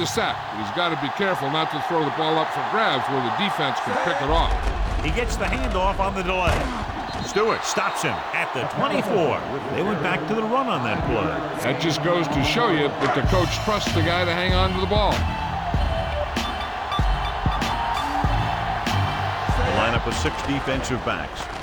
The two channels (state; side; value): identical; both; correlation 1.00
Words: sack, but he's got to be careful not to throw the ball up for grabs where the defense can pick it off. He gets the handoff on the delay. Stewart stops him at the 24. They went back to the run on that play. That just goes to show you that the coach trusts the guy to hang on to the ball. The lineup of 6 defensive backs.